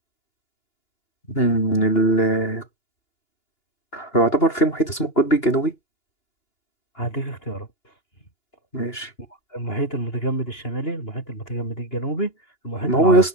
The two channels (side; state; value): right; late; 2.9 ms